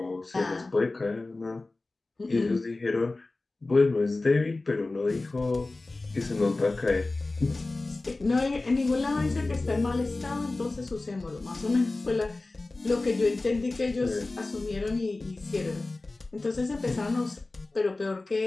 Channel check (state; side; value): quieter; right; 3.2 dB